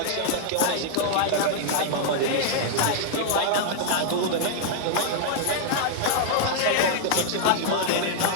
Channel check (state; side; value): different; both; correlation -0.01